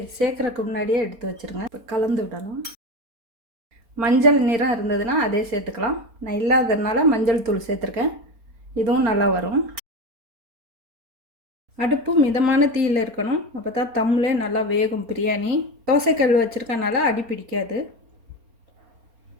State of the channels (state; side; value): late; left; 4.3 ms